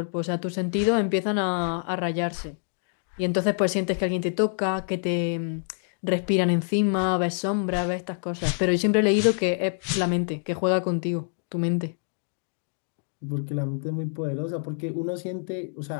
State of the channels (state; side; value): silent; right; 61 dB below the other